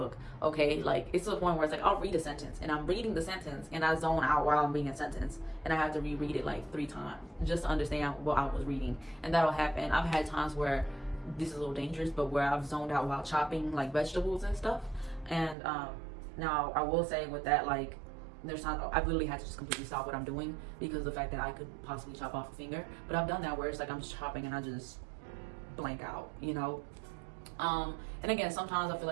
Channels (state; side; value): drops out; left; at 15.6 s